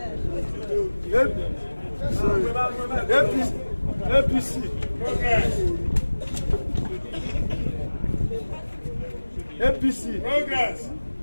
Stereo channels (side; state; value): both; inverted; correlation -1.00